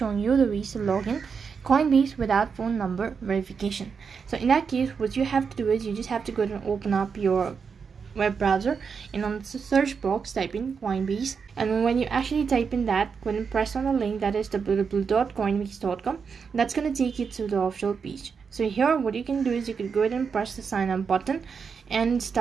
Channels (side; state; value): left; quieter; 5.9 dB